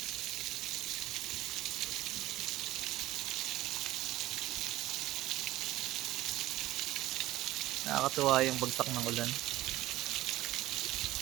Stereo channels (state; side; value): quieter; left; 16.1 dB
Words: Nakakatuwa yung bagsak ng ulan.